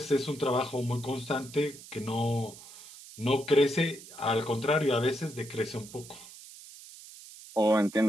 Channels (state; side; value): noise; right; hiss, 17 dB below the sound